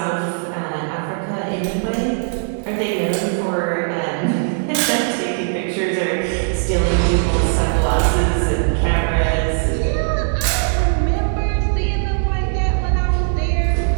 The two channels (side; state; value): left; silent; 59 dB below the other